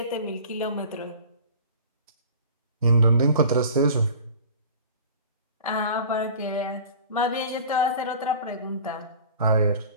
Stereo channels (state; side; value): inverted; both; correlation -0.42